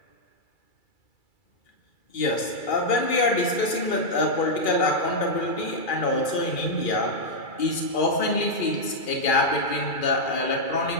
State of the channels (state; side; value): late; right; 2.4 ms